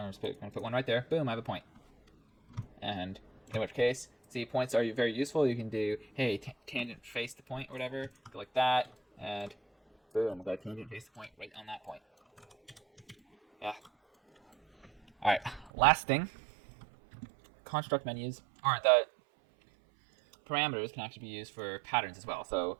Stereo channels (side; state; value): left; drops out; at 15.7 s